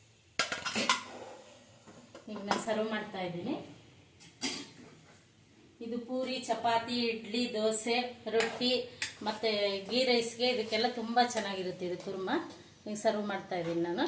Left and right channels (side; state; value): both; identical; correlation 1.00